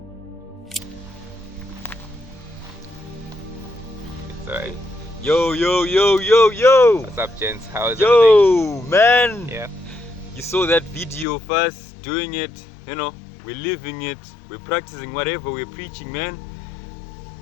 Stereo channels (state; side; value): drops out; right; at 11.2 s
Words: It's alright. Yo. What's up, gents? How is everything? Man. Yeah. You saw that video of us doing it, we're living it, we're practicing whatever we're preaching, man.